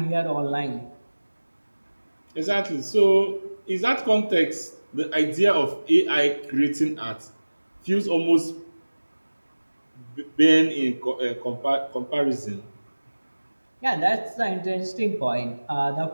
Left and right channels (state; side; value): inverted; both; correlation -1.00